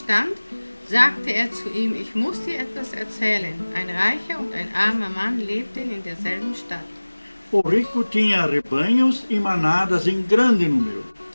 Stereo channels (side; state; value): both; inverted; correlation -1.00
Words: sagte er zu ihm: Ich muss dir etwas erzählen. Ein reicher und ein armer Mann lebten in derselben Stadt. O rico tinha rebanhos e manadas em grande número,